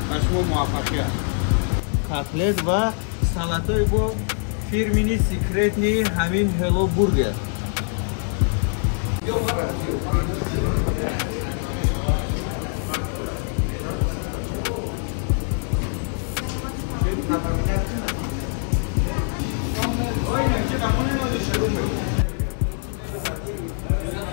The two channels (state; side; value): silent; right; 56 dB below the other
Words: ба шумо муваффақият. котлет ва салатои бо фирмини секретни ҳамин ҳело бургер.